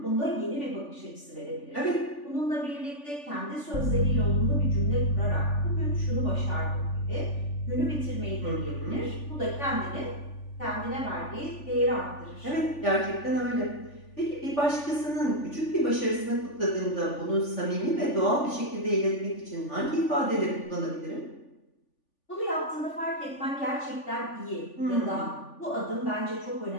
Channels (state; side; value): late; right; 3.5 ms